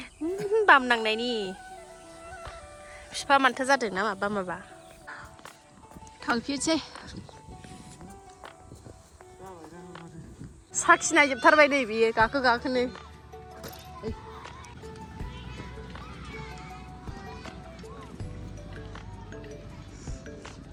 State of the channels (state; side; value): identical; both; correlation 1.00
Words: बाम नांनायनि बिफा मानथो जादों ना माबा थांफिनसै साखिनायजोबथारबाय नै बियो गाखोनो